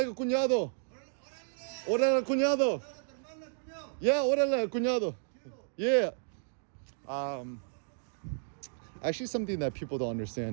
cuñado. Órale, cuñado. Yeah, órale, cuñado. Yeah. Actually, something that people don't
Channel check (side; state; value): left; silent; digital silence